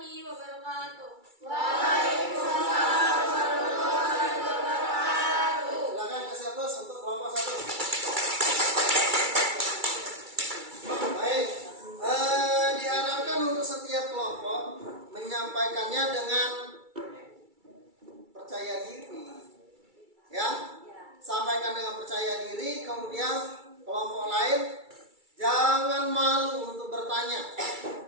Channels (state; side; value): late; left; 2.3 ms